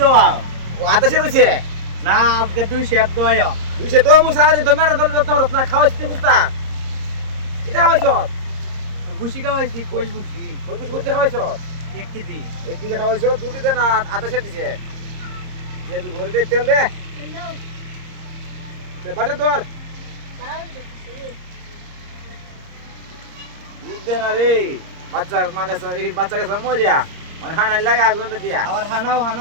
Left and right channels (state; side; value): late; left; 30 ms